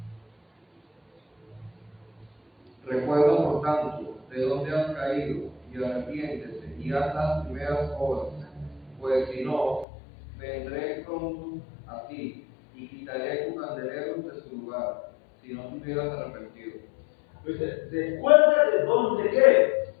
Recuerda, por tanto, de dónde has caído, y arrepiéntete, y haz las primeras obras, pues si no, vendré pronto a ti, y quitaré tu candelero de su lugar, si no te hubieras arrepentido. Pues, recuerda de dónde ¿qué?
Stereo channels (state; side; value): drops out; right; at 9.9 s